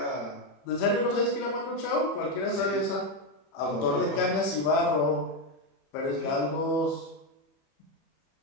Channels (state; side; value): late; right; 31 ms